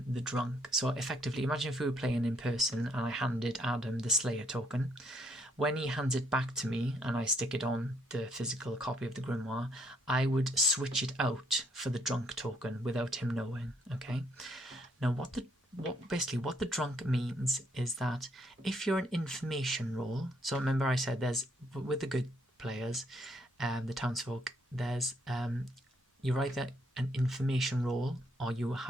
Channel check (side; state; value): both; normal; correlation 0.70